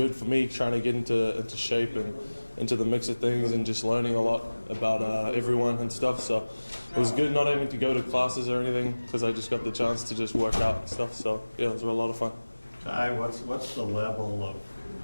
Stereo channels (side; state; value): both; inverted; correlation -1.00